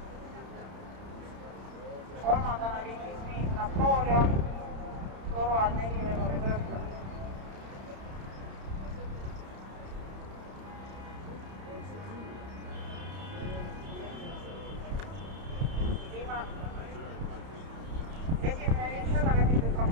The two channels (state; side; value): late; left; 31 ms